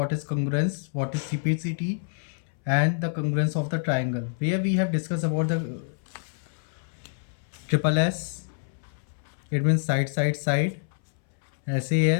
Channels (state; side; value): silent; right; 60 dB below the other